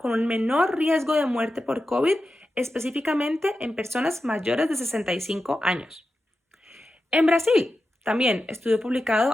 un menor riesgo de muerte por COVID, específicamente en personas mayores de 65 años. En Brasil, también estudio publicado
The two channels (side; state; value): both; normal; correlation 0.91